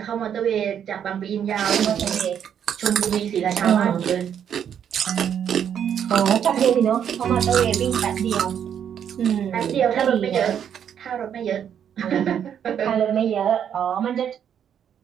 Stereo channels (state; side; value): quieter; left; 8.8 dB